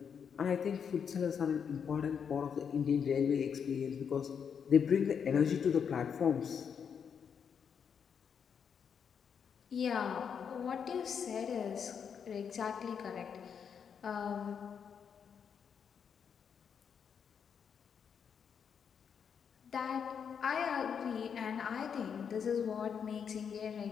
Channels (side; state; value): right; quieter; 7.1 dB